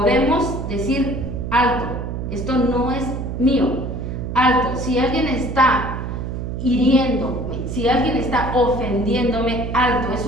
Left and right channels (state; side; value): noise; right; hum, 5 dB below the sound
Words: decir, alto, esto no es mío, alto, si alguien está hiriéndome, si alguien está ofendiéndome, alto,